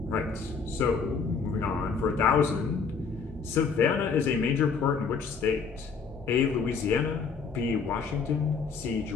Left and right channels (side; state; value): right; quieter; 5.5 dB